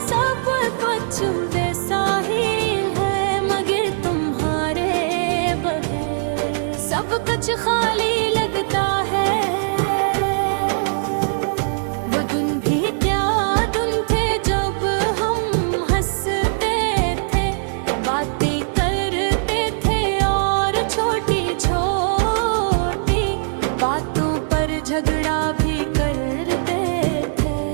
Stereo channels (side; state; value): left; silent; digital silence